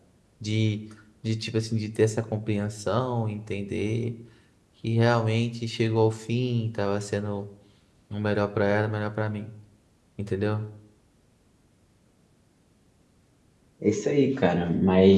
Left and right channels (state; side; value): identical; both; correlation 1.00